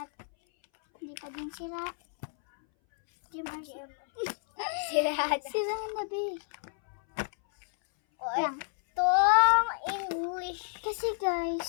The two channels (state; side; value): silent; right; 58 dB below the other